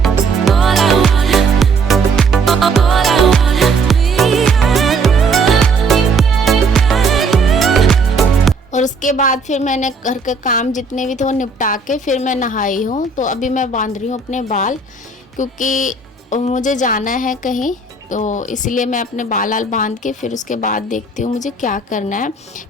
और उसके बाद फिर मैंने घर के काम जितने भी थे वो निपटा के फिर मैं नहाई हूँ। तो अभी मैं बांध रही हूँ अपने बाल क्योंकि मुझे जाना है कहीं, तो इसलिए मैं अपने बाल बांध के फिर उसके बाद देखती हूँ मुझे क्या करना है।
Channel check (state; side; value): quieter; left; 3.8 dB